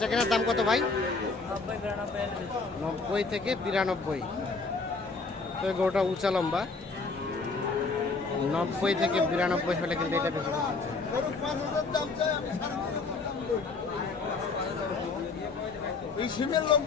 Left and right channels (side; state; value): right; quieter; 4.1 dB